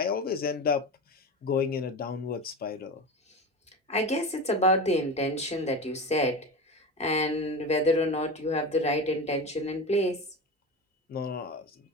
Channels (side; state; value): both; normal; correlation 0.25